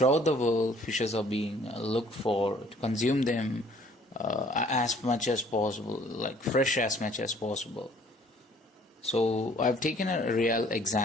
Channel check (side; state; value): both; normal; correlation 0.58